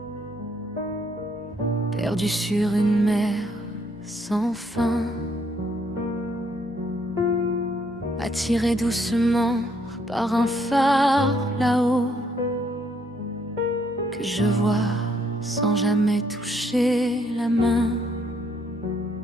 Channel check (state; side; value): normal; both; correlation 0.70